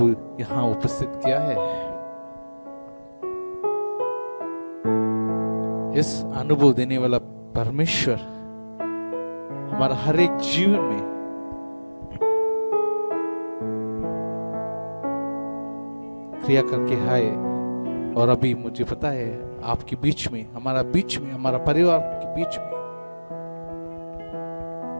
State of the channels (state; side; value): inverted; both; correlation -1.00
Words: यहाँ उपस्थित किया है। इस अनुभव देने वाला परमेश्वर हमारा हर एक जीवन में क्रिया करके है। और अभी मुझे पता है आपके बीच में, हमारा परिवार के बीच में